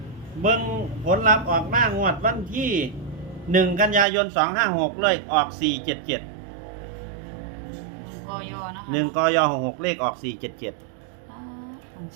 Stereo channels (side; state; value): left; drops out; at 4.0 s